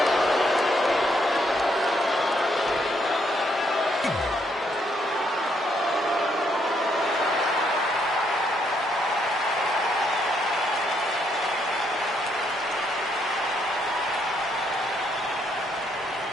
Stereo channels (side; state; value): both; normal; correlation 0.73